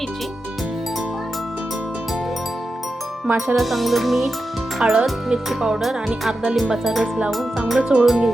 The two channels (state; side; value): normal; both; correlation 0.90